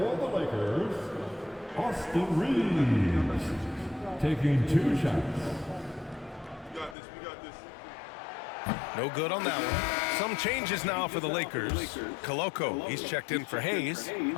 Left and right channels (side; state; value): right; drops out; at 7.0 s